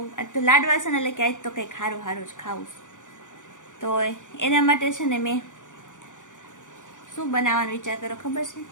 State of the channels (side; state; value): right; late; 0.87 ms